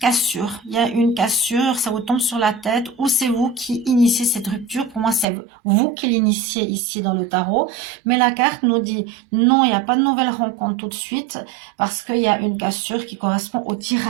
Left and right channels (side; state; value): left; drops out; at 5.2 s